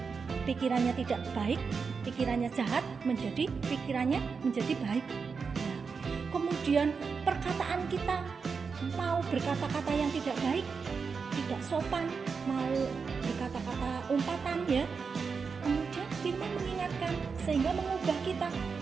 pikirannya tidak baik, pikirannya jahat, menjadi pikirannya menjadi baik. Nah, kemudian perkataan kita, mau berkata-kata yang tidak baik, tidak sopan, mau berkata-kata umpatan ya. Kemudian firman mengingatkan sehingga mengubah kita,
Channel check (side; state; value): left; quieter; 5.3 dB